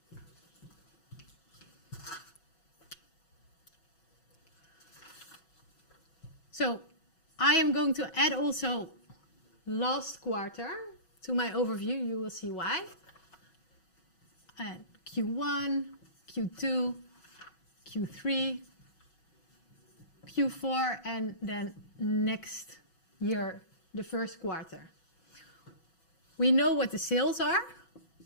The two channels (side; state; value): right; late; 6.1 ms